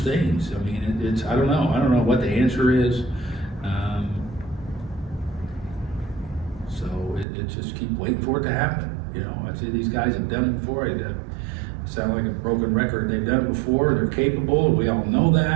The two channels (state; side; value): drops out; left; at 7.2 s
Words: I mean, it's I don't know what the answer is. So it just keep waiting for it to happen. You know, I say these guys have done it before. Sound like a broken record. They've done it before. They're capable. We all know